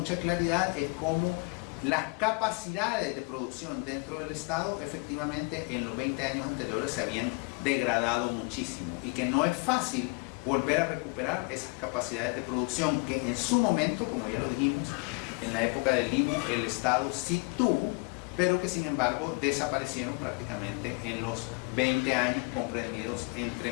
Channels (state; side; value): quieter; right; 30.7 dB